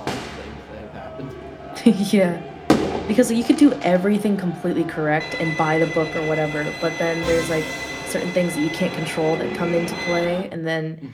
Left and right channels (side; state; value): both; identical; correlation 1.00